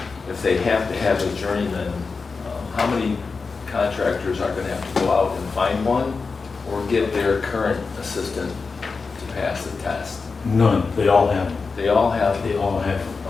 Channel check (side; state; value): right; quieter; 4.6 dB